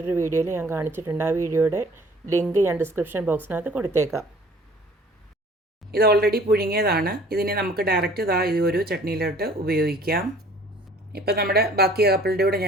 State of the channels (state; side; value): normal; both; correlation 0.53